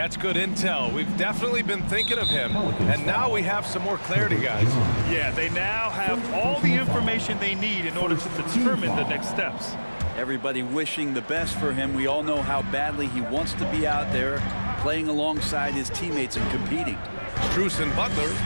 good intel. We've definitely been thinking of him, and now we have some more clarity, guys. Yeah, they now have all the information they need in order to determine the next steps. Everybody wishing the best for him. We all know how badly he wants to be out there, playing alongside his teammates and competing. Strus and Butler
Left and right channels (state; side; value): inverted; both; correlation -1.00